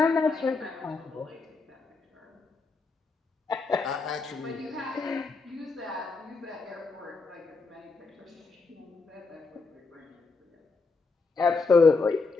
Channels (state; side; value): quieter; right; 4.1 dB